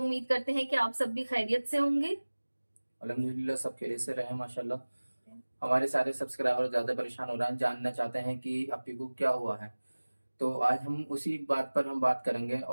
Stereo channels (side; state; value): both; inverted; correlation -1.00